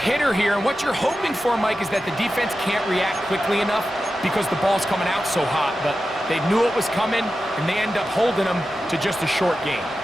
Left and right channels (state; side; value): noise; right; rumble, 28 dB below the sound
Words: here, and what you're hoping for, Mike, is that the defense can't react quickly enough because the ball's coming out so hot, but they knew it was coming, and they end up holding them to just a short gain.